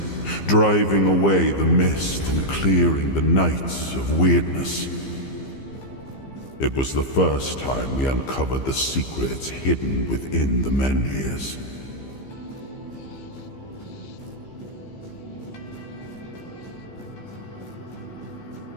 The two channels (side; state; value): right; late; 15 ms